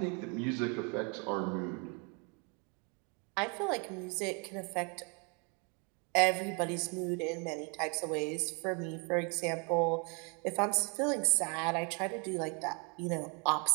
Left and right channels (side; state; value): left; quieter; 34.5 dB